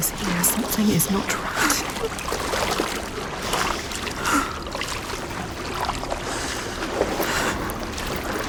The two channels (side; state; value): both; identical; correlation 1.00